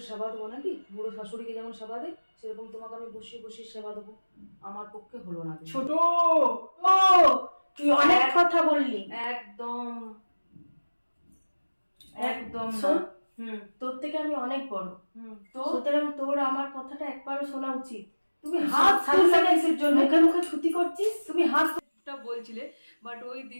সেবা দেবো নাকি? বুড়ো শাশুড়িকে যেমন সেবা দেয়, সেরকম তোমাকে আমি বসিয়ে বসিয়ে সেবা দেবো? আমার পক্ষে হলো না। ছোট ও, তুই অনেক কথা বললি। একদম একদম না। শোন, তোর থেকে আমি অনেক বড়, তো সুতরাং তোর আমার কথাটা একবারও শোনা উচিত। তুমি হাত তুললে কিসের জন্য? মুখে মুখে ছুটি করছিস। তুমি হাত বলছিলে, বাট ওই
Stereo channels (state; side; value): inverted; both; correlation -1.00